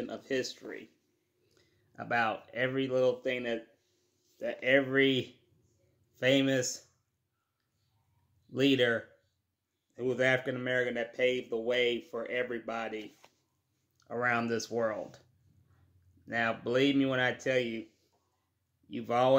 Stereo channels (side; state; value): both; identical; correlation 1.00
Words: of history. About every little thing that every famous leader who was African American that paved the way for everybody around this world. Now, believe me when I tell you, you've